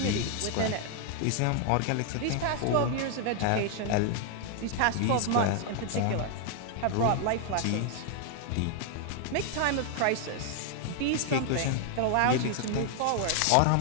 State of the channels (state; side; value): different; both; correlation 0.00